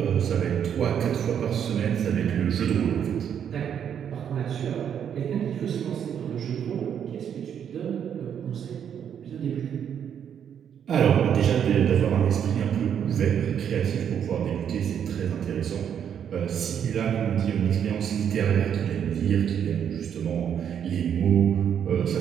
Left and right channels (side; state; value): left; quieter; 8.6 dB